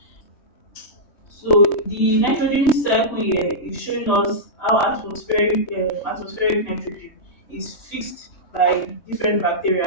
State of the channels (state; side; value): late; right; 3.1 ms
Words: So the nitrogen cycle here is showing us how atmospheric nitrogen is fixed by different